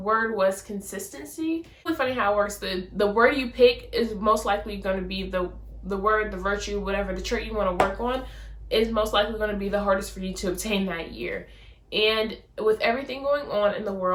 was consistency. It's really funny how it works. The word you pick is most likely going to be the word, the virtue, whatever, the trait you want to work on is most likely going to be the hardest for you to obtain that year. And with everything going on in the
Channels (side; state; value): both; identical; correlation 1.00